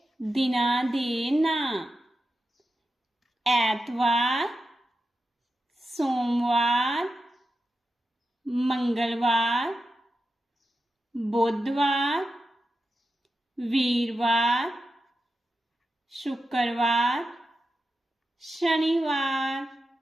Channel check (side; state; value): both; normal; correlation 0.90